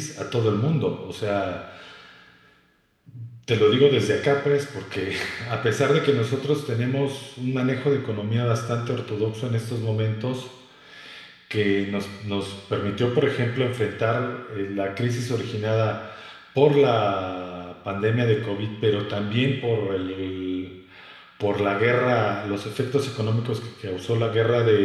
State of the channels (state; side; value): identical; both; correlation 1.00